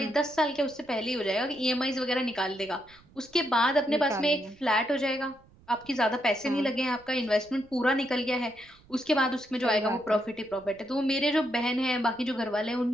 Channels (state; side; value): noise; right; rumble, 27 dB below the sound